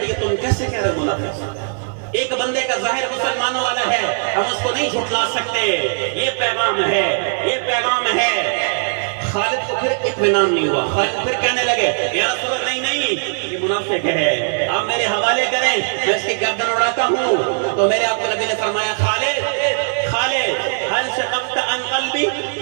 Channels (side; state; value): left; silent; digital silence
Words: ہے، تم کیسے کہہ رہے ہو منافق؟ ایک بندے کا ظاہر مسلمانوں والا ہے، ہم اس کو نہیں جھٹلا سکتے. یہ پیغام ہے، یہ پیغام ہے. خالد کو پھر اطمینان نہیں ہوا. خالد پھر کہنے لگے یا رسول اللہ نہیں، یہ منافق ہے، آپ میرے حوالے کریں، میں اس کی گردن اڑاتا ہوں. تو میرے آپ کو نبی نے فرمایا خالد حل شققت عن قلبی،